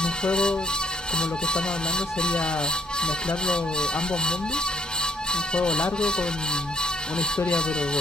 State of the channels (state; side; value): normal; both; correlation 0.64